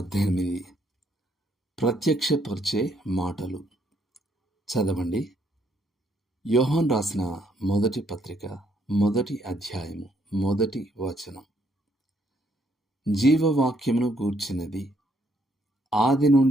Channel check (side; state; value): both; normal; correlation 0.70